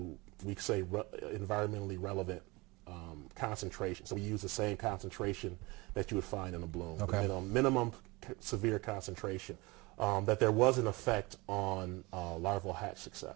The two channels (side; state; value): left; quieter; 24.1 dB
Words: we say, environmentally relevant concentration. So we use the same concentration that you would find in a bloom, okay. the minimum severe concentration, that there was an effect on larval hatch